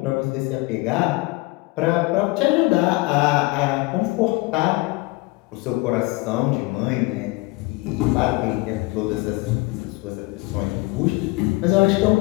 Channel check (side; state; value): right; quieter; 22.9 dB